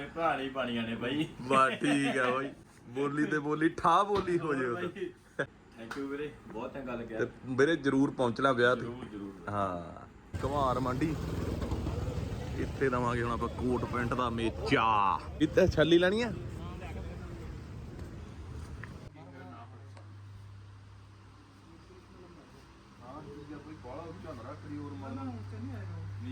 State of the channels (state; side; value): identical; both; correlation 1.00